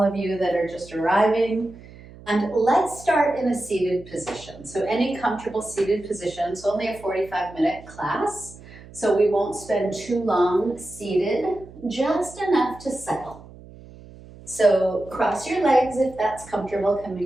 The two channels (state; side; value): noise; right; hum, 19 dB below the sound